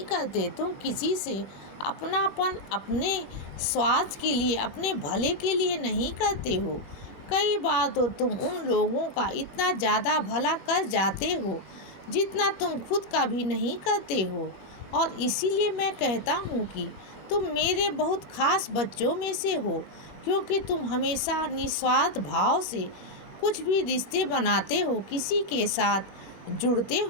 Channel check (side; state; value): right; late; 21 ms